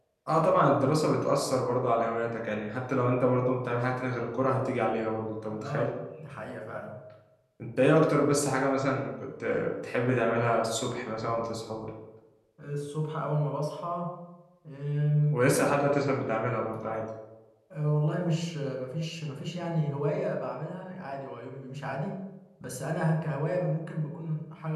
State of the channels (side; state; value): both; identical; correlation 1.00